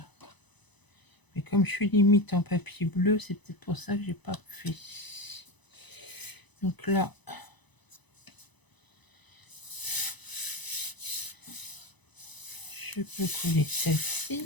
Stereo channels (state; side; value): late; right; 1.0 ms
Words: Mais comme je suis limite en papier bleu, c'est peut-être pour ça que j'ai pas fait. Donc là, je peux coller